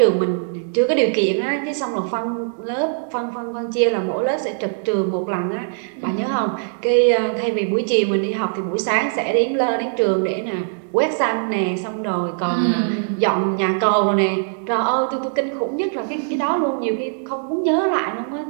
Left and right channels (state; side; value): silent; left; digital silence